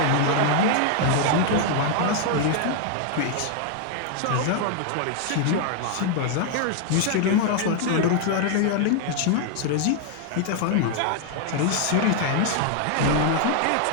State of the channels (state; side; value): different; both; correlation 0.00